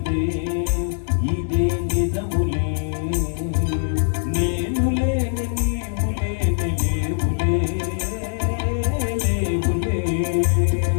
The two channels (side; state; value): right; silent; 62 dB below the other